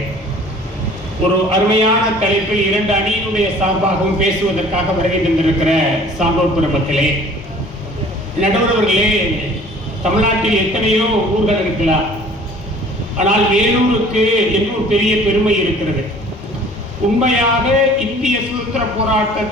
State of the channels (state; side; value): normal; both; correlation 0.50